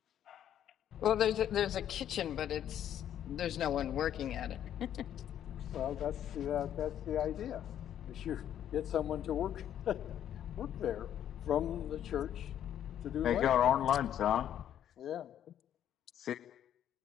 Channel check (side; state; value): right; quieter; 10.4 dB